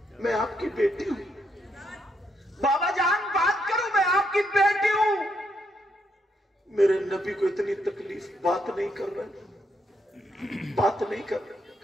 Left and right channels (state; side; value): normal; both; correlation 0.77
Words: मैं आपकी बेटी हूं। बाबा जान बात करो, मैं आपकी बेटी हूं। मेरे नबी को इतनी तकलीफ, बात नहीं कर रहे, बात नहीं कर रहे।